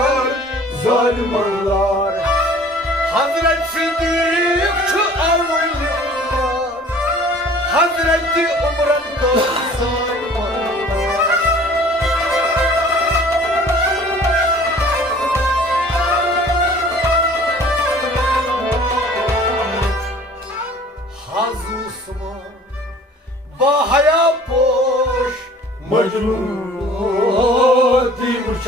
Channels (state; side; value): normal; both; correlation 0.49